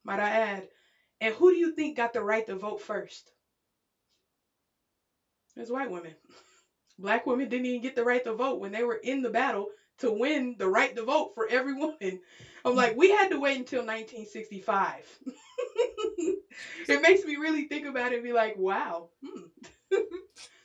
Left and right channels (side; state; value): both; identical; correlation 1.00